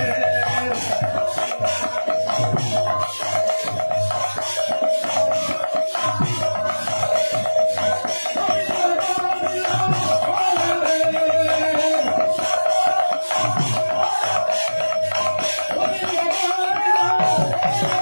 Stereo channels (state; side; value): inverted; both; correlation -1.00